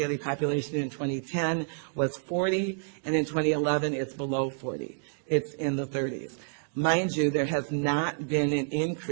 population in 2010 was 40, and in 2011 it's below 40. It's in the 30s. Mind you, there has not been an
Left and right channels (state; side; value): silent; left; digital silence